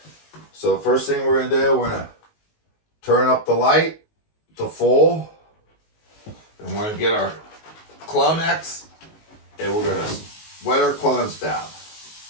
So first thing we're going to do, we're going to turn up the light to full, and we're going to get our Clonex, and we're going to wet our clones down.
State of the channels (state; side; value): late; right; 19 ms